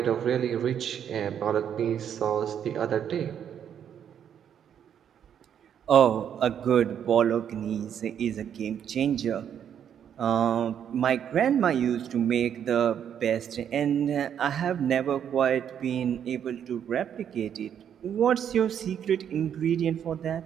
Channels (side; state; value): left; quieter; 8.9 dB